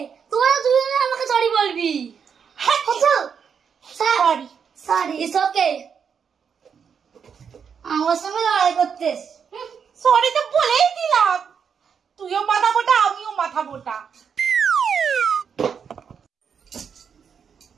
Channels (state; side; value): quieter; left; 6.9 dB